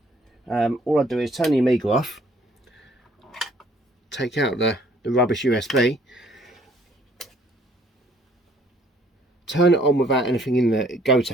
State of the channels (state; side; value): normal; both; correlation 0.61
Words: all I do is turn the Amiga off, take out the rubbish USB, turn it on without anything in the